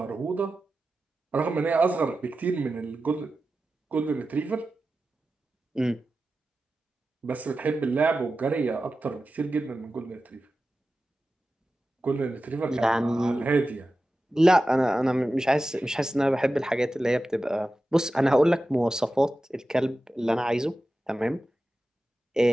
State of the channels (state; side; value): normal; both; correlation 0.93